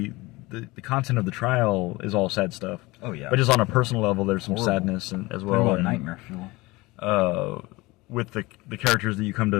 the content of the trial is all sad stuff. Oh yeah. But just on a personal level, there's some sadness as well. And nightmare fuel. With the characters that you come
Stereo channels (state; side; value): quieter; right; 21.8 dB